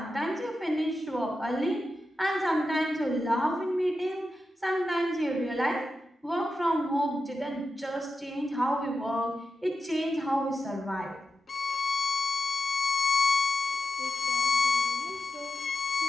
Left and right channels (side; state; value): both; normal; correlation 0.90